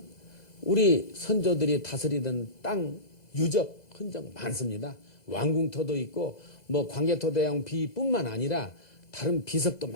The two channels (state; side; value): late; right; 2.0 ms